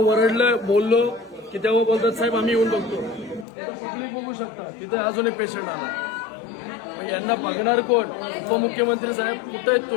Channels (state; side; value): drops out; right; at 3.5 s